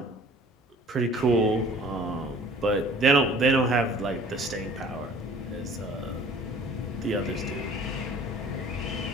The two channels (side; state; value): both; normal; correlation 0.50